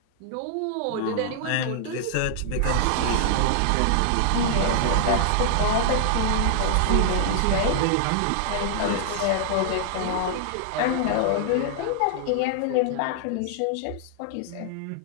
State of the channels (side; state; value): both; different; correlation -0.01